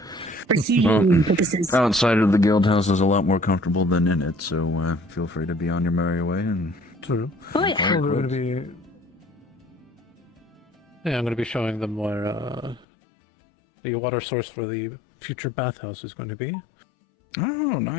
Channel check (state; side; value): drops out; right; at 12.9 s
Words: For heating purposes. Outside of the guild house is a lot more comfortable than in it, so feel free to be on your merry way and. True. Oh yeah. I'm going to be. Yeah, I'm going to be showing them where the water source for the future bathhouse is going to be. Oh,